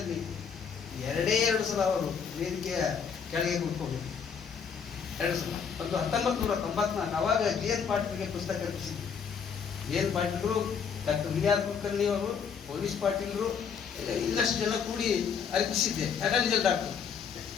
2 ಸಲ ಅವರು ವೇದಿಕೆಯ ಕೆಳಗೆ ಕೂತ್ಕೊಂಡಿದ್ರು. 2 ಸಲ. ಒಂದು 1994 ಅವಾಗ ಜಿ.ಎನ್. ಪಾಟೀಲ್ಗೆ ಪುಸ್ತಕ ರಚಿಸಿದ್ರು. ಜಿ.ಎನ್. ಪಾಟೀಲ್ರು, ಡಾಕ್ಟರ್ ವಿ.ಆರ್. ಕುಲಕರ್ಣಿ ಅವರು, ಪೊಲೀಸ್ ಪಾಟೀಲ್ರು, ಇನ್ನಷ್ಟು ಜನ ಕೂಡಿ ಅರ್ಪಿಸಿದ್ದೆ. ಅಟರ್ನಿ ಡಾಕ್ಟರ್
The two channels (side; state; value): right; quieter; 6.7 dB